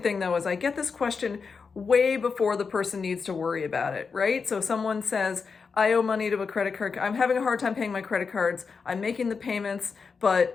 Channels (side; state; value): right; quieter; 5.3 dB